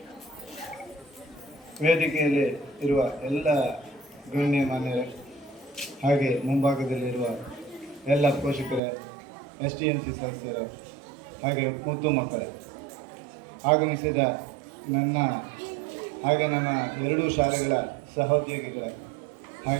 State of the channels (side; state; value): left; drops out; at 8.8 s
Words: ವೇದಿಕೆಯಲ್ಲಿ ಇರುವ ಎಲ್ಲ ಗಣ್ಯಮಾನ್ಯರೇ, ಹಾಗೆ ಮುಂಭಾಗದಲ್ಲಿರುವ ಎಲ್ಲ ಪೋಷಕರೇ, STMC ಸದಸ್ಯರೇ, ಹಾಗೆ ಮುದ್ದು ಮಕ್ಕಳೇ, ಆಗಮಿಸಿದ ನನ್ನ ಎರಡೂ ಶಾಲೆಗಳ ಸಹೋದ್ಯೋಗಿಗಳೇ,